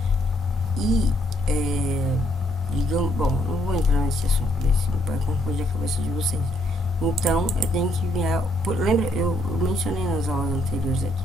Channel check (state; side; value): normal; both; correlation 0.71